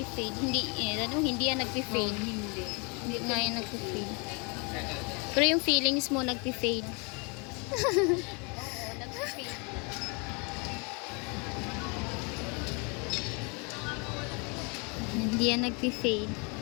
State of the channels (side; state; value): right; quieter; 32.6 dB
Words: Hindi yan nagpi-fade. Hindi. Hindi nga yan nagpi-fade. Pero yung feelings mo nagpi-fade. Oo, nag-fade. Hindi yan nagpi-fade.